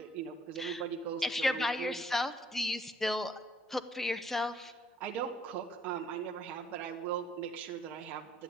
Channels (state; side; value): normal; both; correlation 0.64